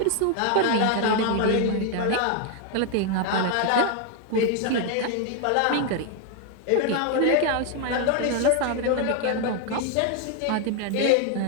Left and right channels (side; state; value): both; different; correlation 0.01